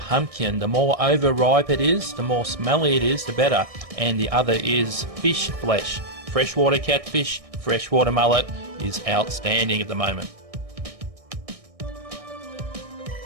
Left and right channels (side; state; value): left; late; 1.6 ms